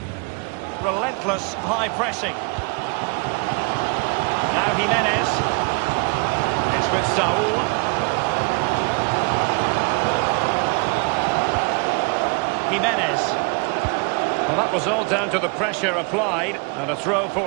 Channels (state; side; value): quieter; left; 31.9 dB